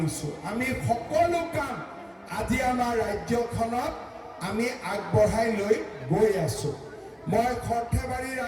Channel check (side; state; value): both; identical; correlation 1.00